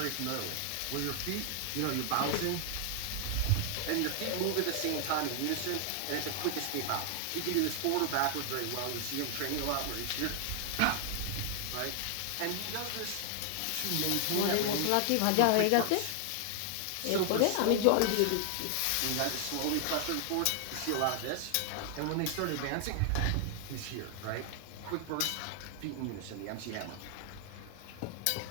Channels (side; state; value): both; different; correlation 0.00